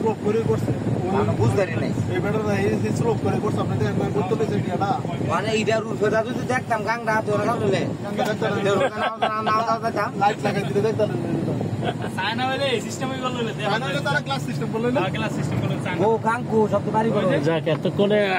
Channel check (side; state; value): both; identical; correlation 1.00